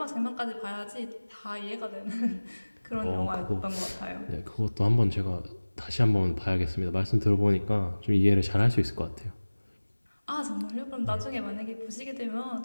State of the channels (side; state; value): both; inverted; correlation -1.00